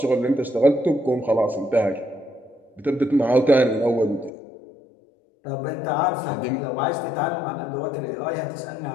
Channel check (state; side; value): drops out; right; at 4.3 s